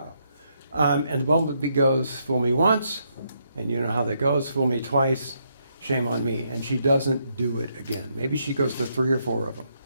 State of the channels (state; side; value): inverted; both; correlation -0.76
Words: And the bumblebee goes, fool me once, and you know how that goes, fool me twice, shame on me. And she doesn't do it again. Maybe she goes to 3 or 4 of them.